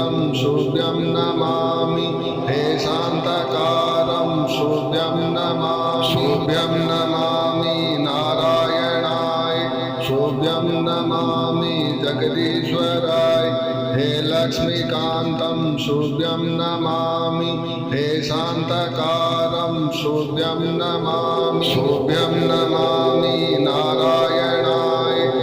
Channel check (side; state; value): both; identical; correlation 1.00